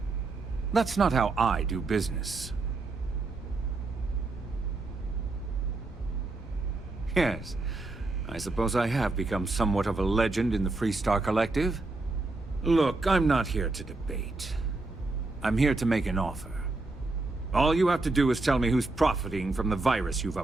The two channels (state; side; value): quieter; left; 3.3 dB